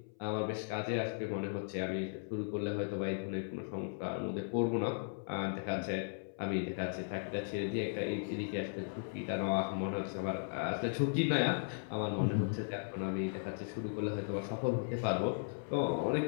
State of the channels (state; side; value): silent; right; 53 dB below the other